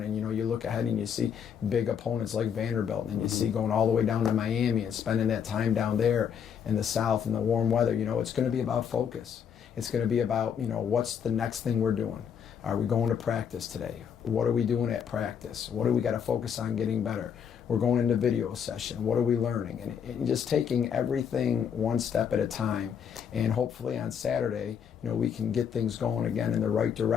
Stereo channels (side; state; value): right; quieter; 7.8 dB